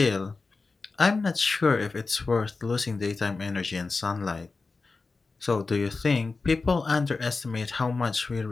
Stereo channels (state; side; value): quieter; right; 4.0 dB